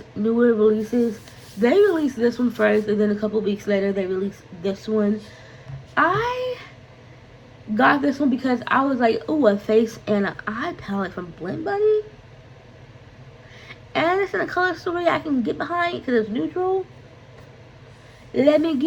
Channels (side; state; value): both; identical; correlation 1.00